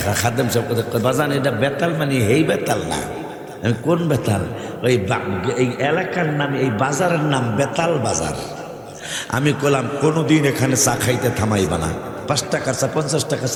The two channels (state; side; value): identical; both; correlation 1.00